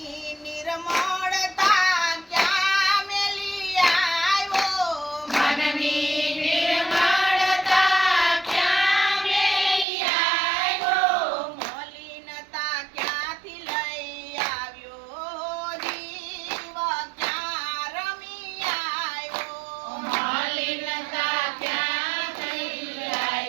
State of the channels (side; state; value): left; drops out; at 9.9 s